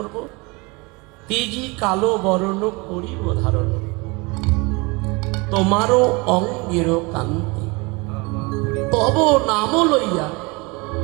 তেজি কালো বরণ করিব ধারণ, তোমারও অঙ্গের কান্তি, তব নাম লইয়া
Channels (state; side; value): quieter; left; 26.9 dB